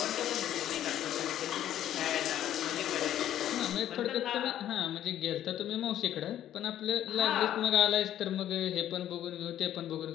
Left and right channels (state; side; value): quieter; right; 11.6 dB